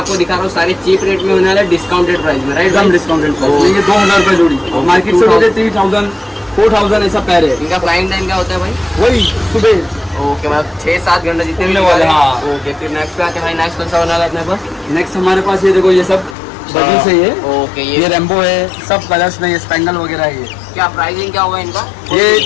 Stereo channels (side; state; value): right; drops out; at 16.4 s